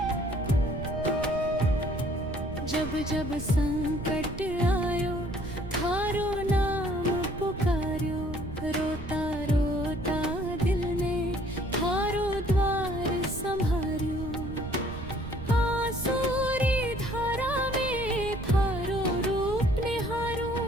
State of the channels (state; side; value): noise; right; rumble, 10 dB below the sound